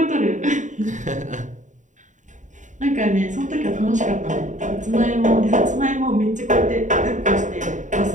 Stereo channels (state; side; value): late; left; 0.36 ms